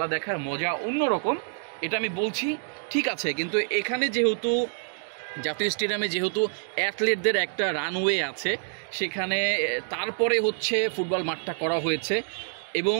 দেখার মজা অন্যরকম, এটা আমি বলছি, ঠিক আছে। কিন্তু এখানে যেহেতু জাতীয় স্টেডিয়ামে যেহেতু অ্যাথলেটদের একটা রানওয়ে আছে, সেখানে তারপরে হচ্ছে ফুটবল মাঠটা করা হয়েছে এবং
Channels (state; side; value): silent; left; digital silence